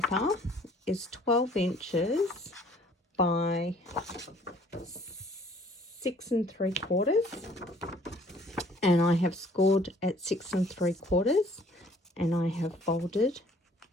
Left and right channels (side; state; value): both; normal; correlation 0.57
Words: is 12 inches by 6 3/4. And I have scored at 6 3/4. And I have folded